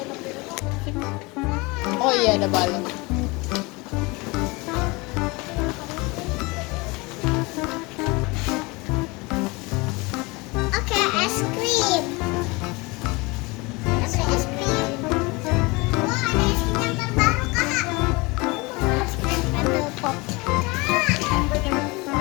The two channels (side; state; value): right; quieter; 25.4 dB